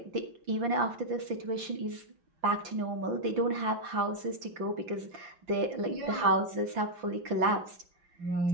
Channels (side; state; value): left; late; 5.8 ms